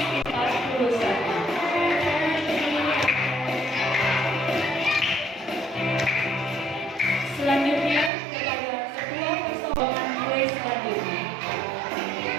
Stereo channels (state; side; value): drops out; left; at 8.1 s